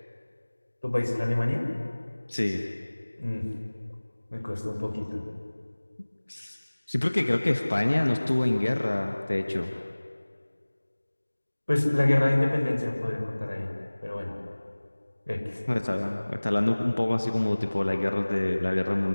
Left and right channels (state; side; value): inverted; both; correlation -1.00